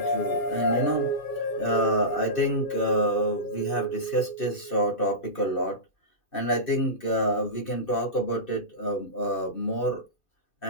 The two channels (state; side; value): late; right; 2.6 ms